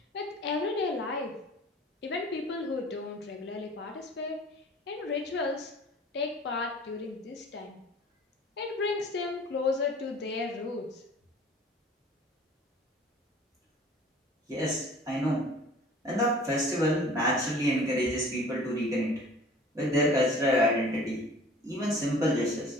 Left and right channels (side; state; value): both; normal; correlation 0.47